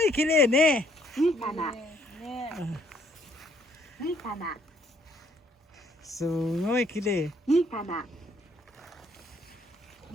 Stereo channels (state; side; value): normal; both; correlation 0.66